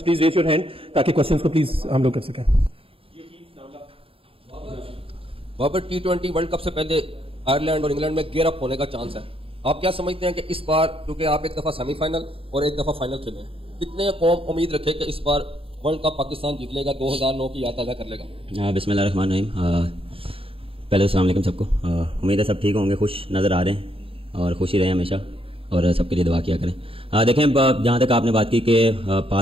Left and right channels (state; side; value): late; left; 0.27 ms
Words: please raise your hand ताकि क्वेश्चंस को प्लीज हम लोग कर सकें। बाबर, T20 वर्ल्ड कप से पहले आयरलैंड और इंग्लैंड में गेयर अप होने का चांस है। आप क्या समझते हैं कि इस बार, क्योंकि आप एक दफ़ा सेमीफाइनल और एक दफ़ा फाइनल खेले हैं, कितने कौम उम्मीद रखे कि इस बार वर्ल्ड कप पाकिस्तान जीत लेगा, 2009 की याद ताज़ा कर लेगा? बिस्मिल्लाहिर्रहमानिर्रहीम। पहले अस्सलाम वालेकुम सबको। उम्मीद है सब ठीक होंगे, खुश नज़र आ रहे हैं और खुशी रहे हमेशा और सबके लिए दुआ किया करें। देखें, जहाँ तक आपने बात की कि